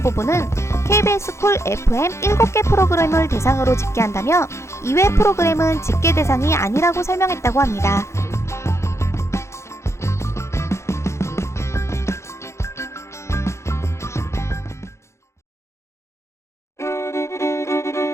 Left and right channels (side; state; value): right; late; 0.13 ms